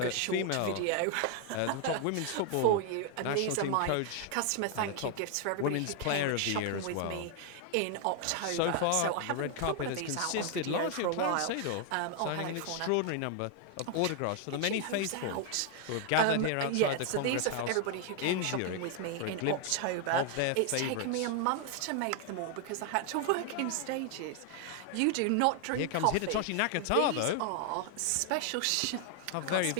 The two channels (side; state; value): both; different; correlation 0.00